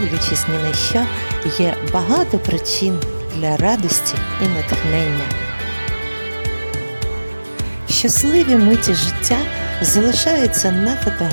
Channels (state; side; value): inverted; both; correlation -1.00